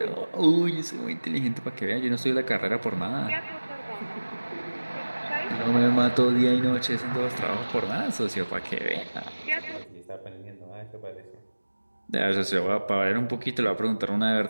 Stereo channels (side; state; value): both; inverted; correlation -1.00